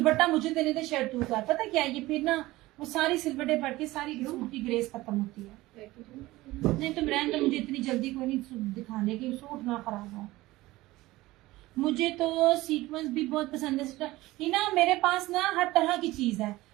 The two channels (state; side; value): quieter; left; 18.5 dB